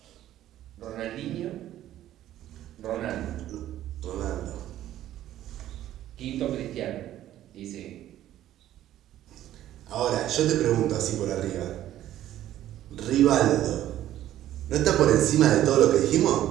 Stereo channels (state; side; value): quieter; left; 12.9 dB